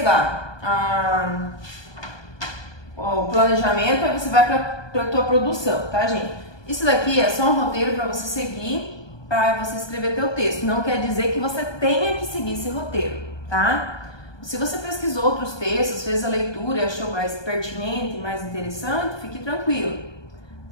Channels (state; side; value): late; right; 1.2 ms